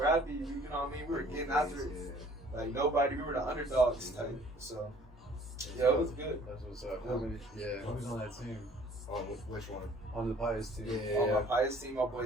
You know what I mean? We were getting after it. Like nobody. We were the underdogs type. So it was good. That's what's up. Who's on that team? On which one? On the Pius team. On my Pius team, my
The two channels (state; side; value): normal; both; correlation 0.55